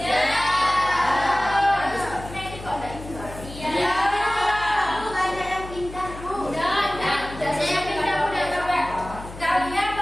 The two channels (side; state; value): left; noise; hum, 14 dB below the sound